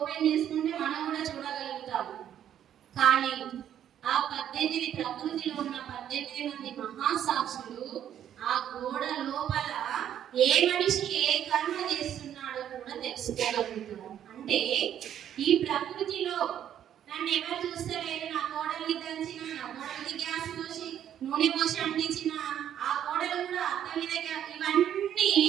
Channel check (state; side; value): quieter; left; 10.2 dB